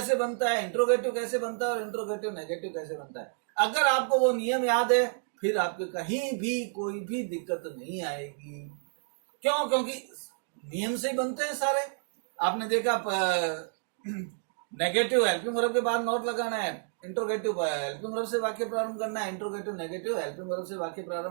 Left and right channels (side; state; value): left; silent; digital silence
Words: बनता है, इंट्रोगेटिव कैसे बनता है और इंट्रोगेटिव नेगेटिव कैसे बनता है। अगर आपको वो नियम याद है फिर आपके कहीं भी कोई भी दिक्कत नहीं आएगी। क्यों? क्योंकि नियम से ही बनते हैं सारे। आपने देखा नेगेटिव हेल्पिंग वर्ब के बाद नॉट लगाना है, इंट्रोगेटिव हेल्पिंग वर्ब से वाक्य प्रारंभ करना है, इंट्रोगेटिव नेगेटिव हेल्पिंग वर्ब से वाक्य